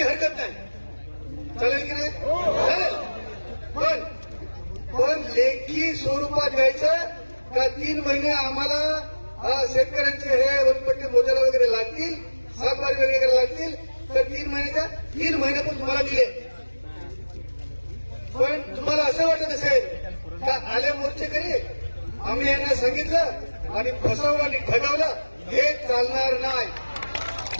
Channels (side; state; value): both; inverted; correlation -1.00